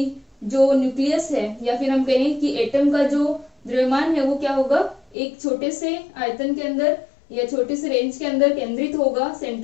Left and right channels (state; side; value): drops out; right; at 5.2 s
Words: जो न्यूक्लियस है या फिर हम कहें कि एटम का जो द्रव्यमान है वो क्या होगा, एक छोटे से आयतन के अंदर या छोटे से रेंज के अंदर केंद्रित होगा,